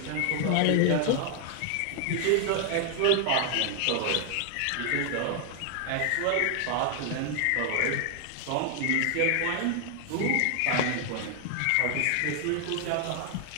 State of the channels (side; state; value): both; different; correlation 0.00